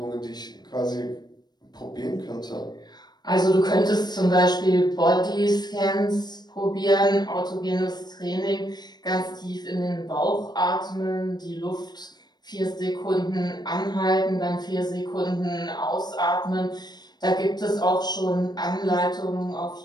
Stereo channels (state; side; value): late; right; 0.20 ms